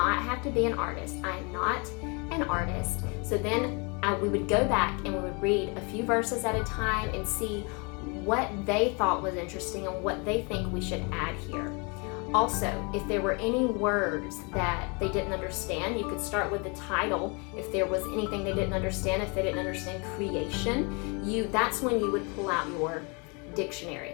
have to be an artist. I am not an artist. So then we would go back and we would read a few verses at a time and see what they thought was interesting and what they think we should add here. Also, if there were any words that they didn't understand, you could start with the title. If there was anything they didn't understand, if they didn't understand creation, that's when you would pull out your dictionary.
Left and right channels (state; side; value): quieter; right; 31.9 dB